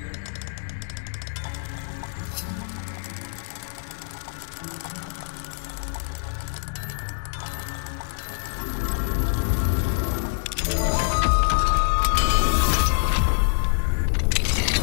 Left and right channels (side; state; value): right; silent; digital silence